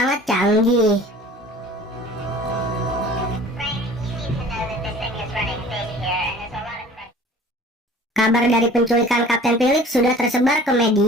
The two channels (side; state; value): both; normal; correlation 0.46